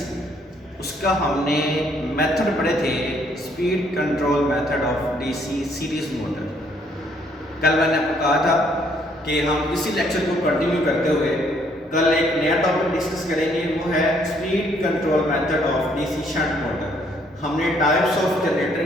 उसका हमने मेथड पढ़े थे, speed control method of DC series motor. कल मैंने आपको कहा था कि हम इसी लेक्चर को कंटिन्यू करते हुए कल एक नया टॉपिक डिस्कस करेंगे, वो है speed control method of DC shunt motor. हमने टाइप्स ऑफ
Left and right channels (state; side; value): normal; both; correlation 0.67